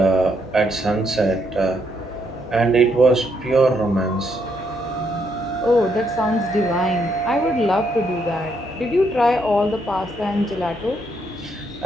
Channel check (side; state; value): both; normal; correlation 0.75